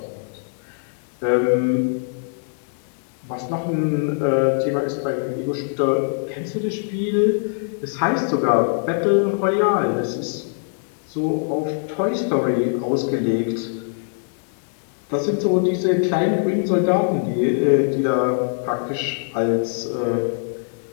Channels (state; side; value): silent; right; digital silence